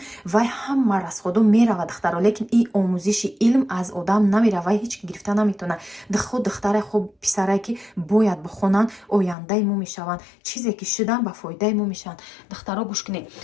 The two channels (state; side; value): drops out; right; at 9.3 s